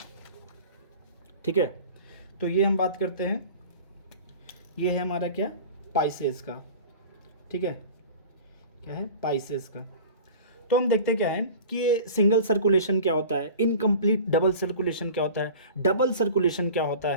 ठीक है। तो ये हम बात करते हैं, ये है हमारा क्या, पाइसेस का, ठीक है। क्या है, पाइसेस का। तो हम देखते क्या है कि ये सिंगल सर्कुलेशन क्या होता है, इनकम्प्लीट डबल सर्कुलेशन क्या होता है, डबल सर्कुलेशन क्या होता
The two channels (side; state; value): both; inverted; correlation -0.39